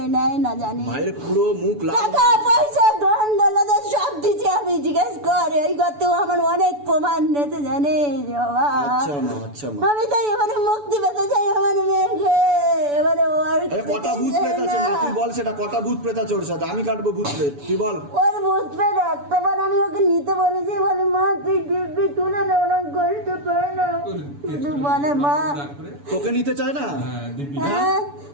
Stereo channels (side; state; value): left; late; 6.9 ms